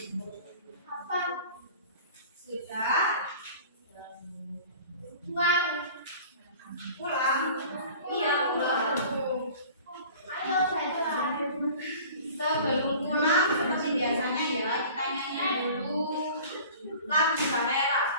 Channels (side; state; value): both; inverted; correlation -0.44